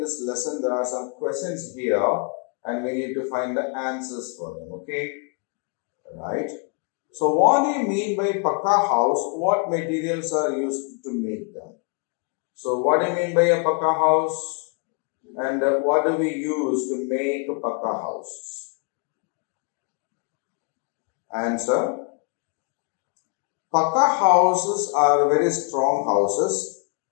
lesson, there are some questions here and we need to find the answers for them. Okay. Right. So what do you mean by pakka house? What materials are used to make them? So what do you mean by a pakka house? And what do we use to make a pakka house? Answer. Pakka houses are very strong houses.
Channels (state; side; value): quieter; right; 35.2 dB